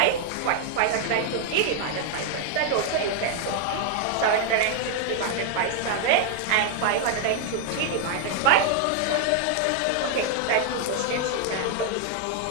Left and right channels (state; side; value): different; both; correlation 0.00